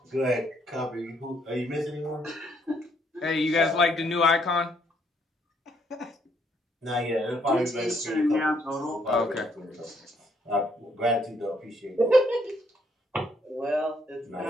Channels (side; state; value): both; normal; correlation 0.70